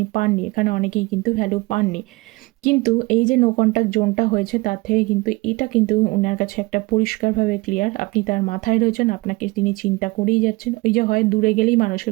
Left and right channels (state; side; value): quieter; left; 23.6 dB